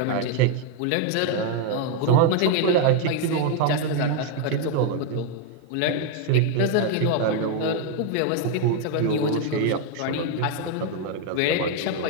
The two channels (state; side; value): different; both; correlation 0.01